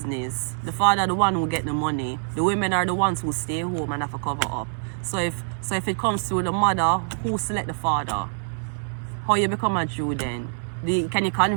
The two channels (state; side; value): silent; left; 62 dB below the other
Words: The father the one who get the money. The women are the ones who stay home and have to cover up. So if it comes through the mother, who select the father? How you become a Jew then? Can you